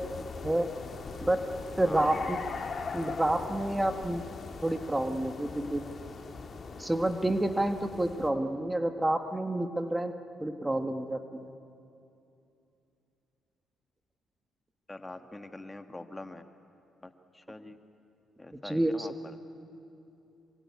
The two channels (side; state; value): both; normal; correlation 0.95